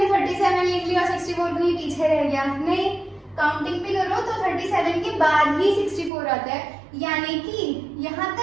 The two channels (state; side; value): drops out; left; at 6.1 s